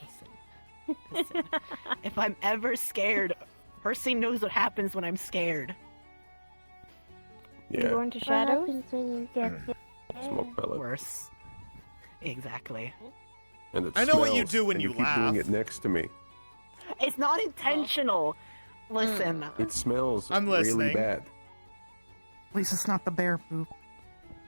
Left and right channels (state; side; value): inverted; both; correlation -1.00